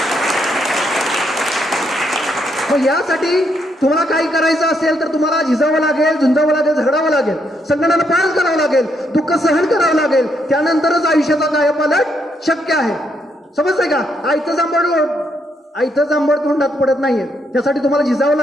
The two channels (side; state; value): both; normal; correlation 0.76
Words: मग यासाठी तुम्हाला काही करायचं असेल तर तुम्हाला झिजावं लागेल, झुंजावं लागेल, झगडावं लागेल, संकटाला पार करावं लागेल, दुःख सहन करावं लागेल. त्यानंतरच आयुष्याचा कायापालट शक्य आहे. समजतंय का? आयतं जांभळ तोंडात पडत नाहीये. त्यासाठी तुम्हाला झिजावं